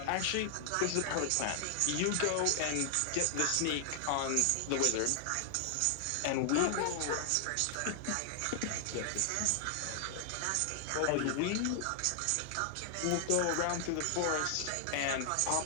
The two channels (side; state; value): both; different; correlation 0.00